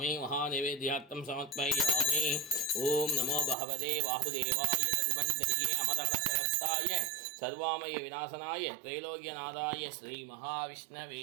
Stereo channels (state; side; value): drops out; left; at 3.6 s